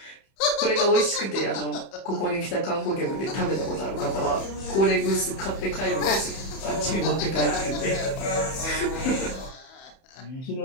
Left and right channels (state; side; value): late; right; 31 ms